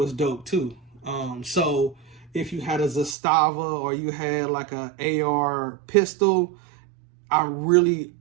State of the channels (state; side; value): drops out; left; at 3.2 s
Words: dope too. So if you had a Zastava or you had like a AR pistol, I